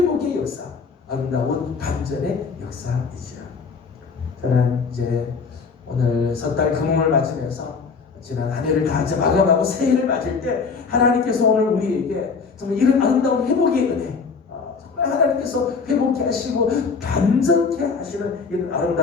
역사, 아름다운 반전의 역사이죠. 저는 이제 오늘 섣달 금음을 맞으면서 지난 한 해를 다 이제 마감하고 새해를 맞을 때 하나님께서 오늘 우리에게 정말 이런 아름다운 회복의 은혜, 정말 하나님께서 회복케 하시고 반전케 하시는 이런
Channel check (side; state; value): right; quieter; 5.1 dB